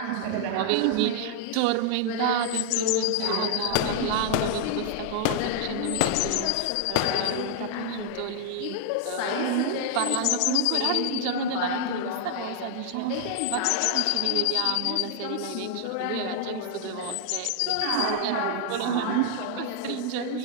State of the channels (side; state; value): both; different; correlation 0.00